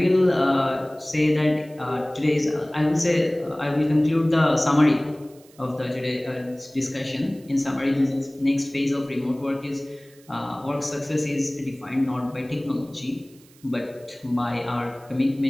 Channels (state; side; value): noise; right; hiss, 27 dB below the sound